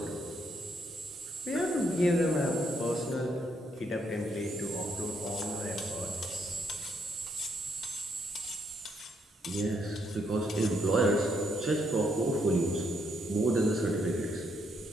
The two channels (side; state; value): both; normal; correlation 0.75